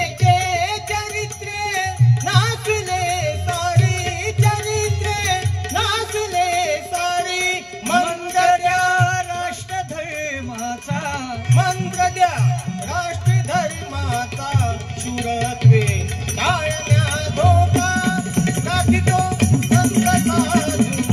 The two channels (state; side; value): identical; both; correlation 1.00